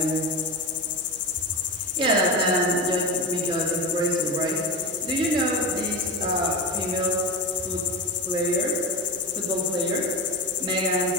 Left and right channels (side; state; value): right; noise; hum, 26 dB below the sound